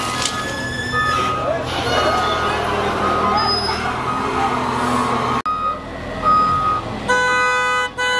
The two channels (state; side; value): identical; both; correlation 1.00